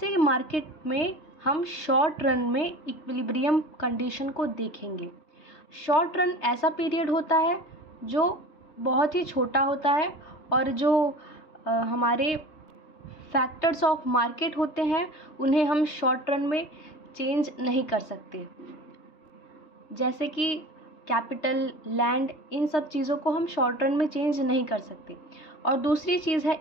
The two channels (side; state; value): right; late; 3.2 ms